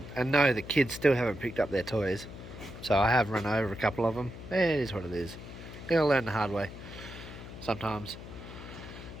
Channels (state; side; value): noise; left; hum, 13 dB below the sound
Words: no, the kids still haven't picked up their toys, so I have run over a couple of them. It is what it is. You gotta learn the hard way sometimes.